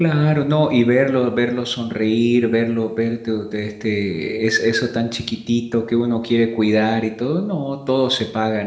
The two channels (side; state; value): both; identical; correlation 1.00